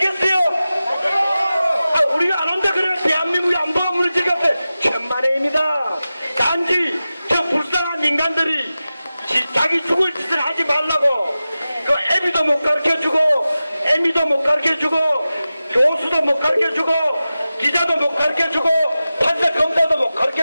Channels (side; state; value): both; inverted; correlation -0.94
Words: 우리가 안 온다 그래 대한민국의 안보가 무너지겠어요? 천만에입니다. 단지 저 불쌍한 인간들이 자기 죽을 짓을 하지 말라고 그 애비도 못 가르쳐주고 애미도 못 가르쳐주고 교수도 못 가르쳐주고 기자도 못 가르쳐주고 판사 검사도 못